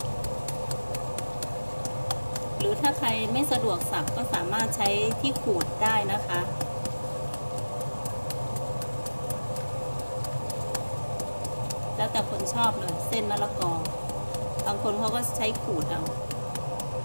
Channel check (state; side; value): inverted; both; correlation -1.00